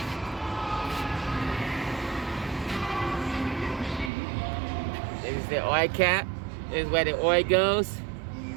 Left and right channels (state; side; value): drops out; left; at 4.1 s